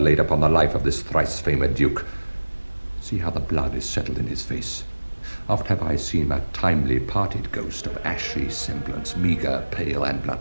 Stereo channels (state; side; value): inverted; both; correlation -1.00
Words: upon the life of this thrice-famed duke. See how the blood is settled in his face. Oft have I seen a timely parted ghost of ashy semblance, meagre, pale, and